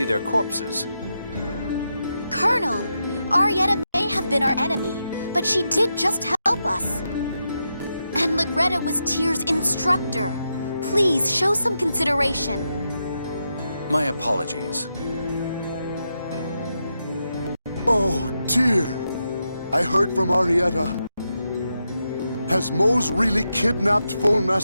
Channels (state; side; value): inverted; both; correlation -0.86